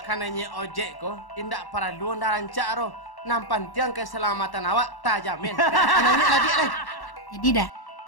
kananya ojek ko, tindak perlu anda rancak roh. Nampan tiang keselamatan awak tak jamin. Kananya lagi Jadi dah.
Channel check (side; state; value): right; late; 1.1 ms